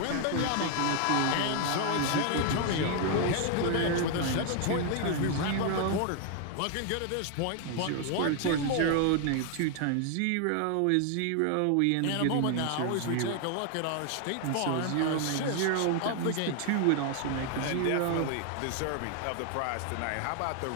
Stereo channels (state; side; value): different; both; correlation 0.00